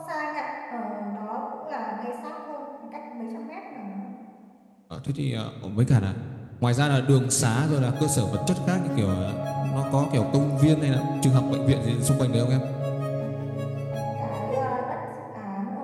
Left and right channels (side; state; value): both; identical; correlation 1.00